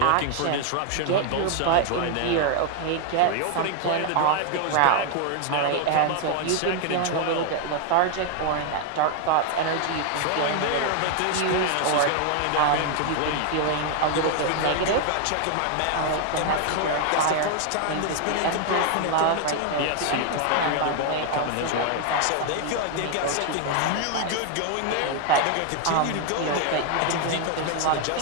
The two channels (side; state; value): both; different; correlation 0.00